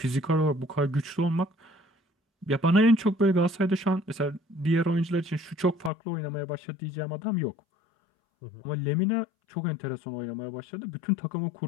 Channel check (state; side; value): drops out; right; at 5.9 s